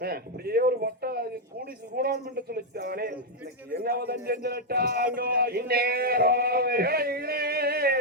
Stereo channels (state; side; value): normal; both; correlation -0.01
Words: அப்படியே ஒரு வட்ட கூடி கூடான் என்று சொல்லித்தானே என்ன வதம் செஞ்சிட்டாங்க இந்நேரம்